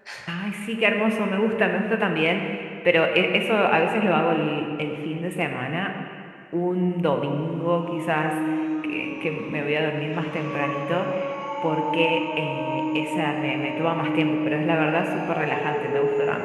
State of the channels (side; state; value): both; identical; correlation 1.00